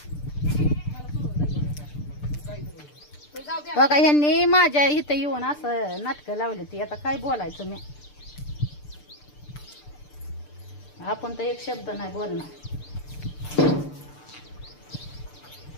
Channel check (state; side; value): late; right; 6.7 ms